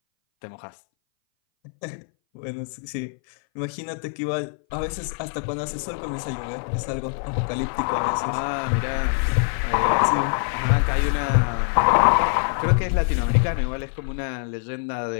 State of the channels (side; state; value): right; silent; 60 dB below the other